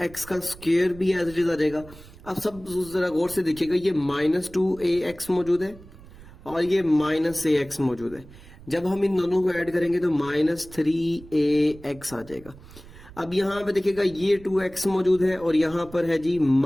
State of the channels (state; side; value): noise; right; rumble, 19 dB below the sound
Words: का स्क्वायर भी एज इट इज आ जाएगा। अब सब जरा गौर से देखिएगा, ये -2ax मौजूद है और ये -ax मौजूद है। जब हम इन दोनों को ऐड करेंगे तो -3ax आ जाएगा। अब यहाँ पे देखिएगा ये 2x मौजूद है और यहाँ पर है जी